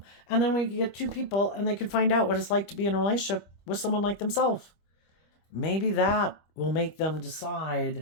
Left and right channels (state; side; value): late; right; 25 ms